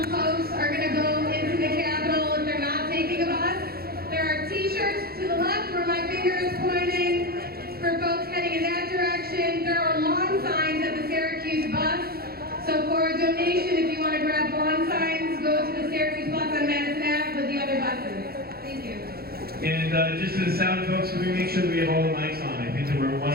folks are going to go into the Capitol if they're not taking a bus. There are t-shirts to the left where my finger is pointing for folks heading in that direction. There are lawn signs at the Syracuse bus. So for a donation, if you want to grab lawn signs, go to the Syracuse bus on Madison Ave with the other buses. Thank you. and just to the sound folks, can we make sure that we have all the mics on? I think that one of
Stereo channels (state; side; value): late; left; 0.45 ms